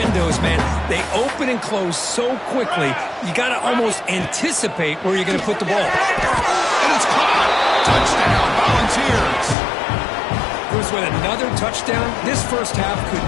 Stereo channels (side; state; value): right; drops out; at 9.6 s